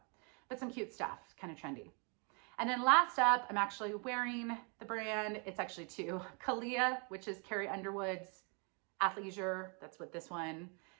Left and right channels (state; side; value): quieter; left; 35.5 dB